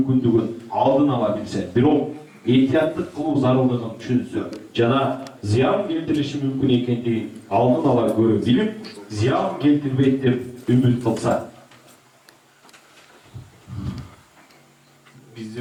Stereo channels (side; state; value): both; identical; correlation 1.00